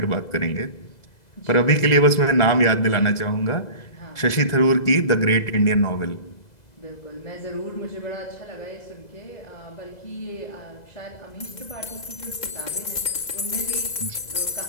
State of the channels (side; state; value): right; late; 2.0 ms